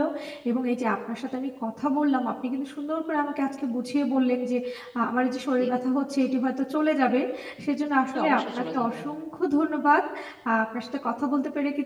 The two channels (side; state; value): both; identical; correlation 1.00